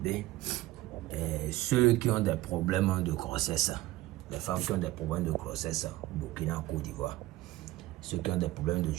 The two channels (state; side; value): quieter; left; 17.4 dB